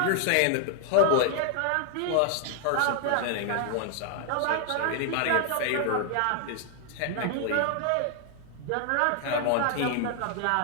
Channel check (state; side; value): different; both; correlation 0.00